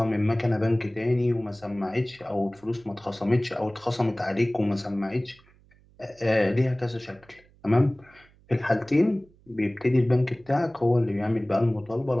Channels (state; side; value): noise; right; hum, 29 dB below the sound